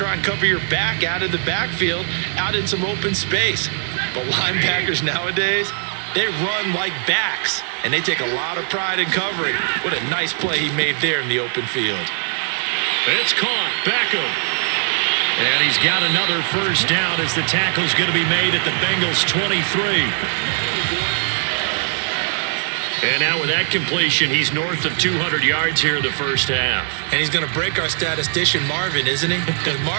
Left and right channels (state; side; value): silent; left; digital silence